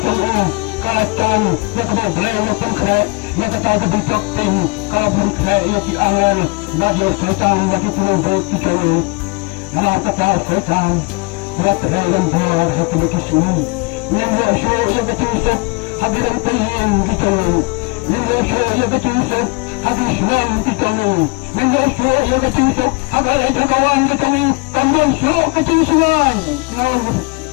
katan yang keberbelai maupun kena yang kata didokting kalau belum kena ia diawal bagi setan bagi penumpuk dicari Namar kata setan buat terai dan bar ketemu kisumi yang bersyur yang ketusuk hadiran tayin dicari yang bersyur yang ketusuk hadis senang dicari yang bersyur yang ketusuk hagalai jagawan dicari tambang syuruk kecing sungai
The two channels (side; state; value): right; quieter; 27.6 dB